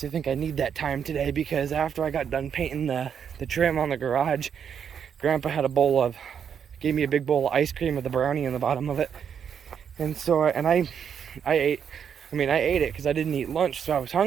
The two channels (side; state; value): left; quieter; 7.8 dB